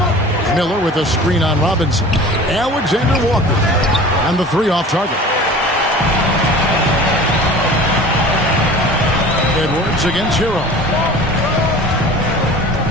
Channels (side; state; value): both; normal; correlation 0.41